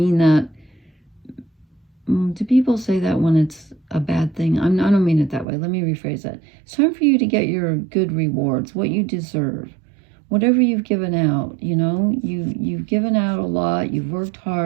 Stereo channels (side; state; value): left; drops out; at 5.5 s